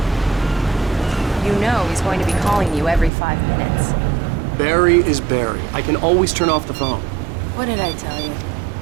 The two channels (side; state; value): left; drops out; at 3.1 s